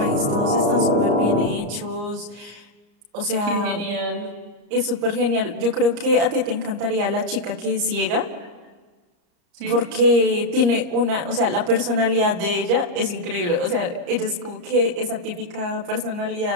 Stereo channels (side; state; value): left; late; 34 ms